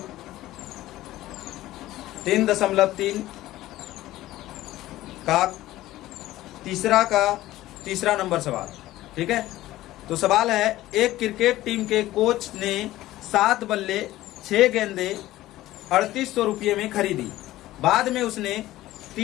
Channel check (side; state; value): right; quieter; 15.8 dB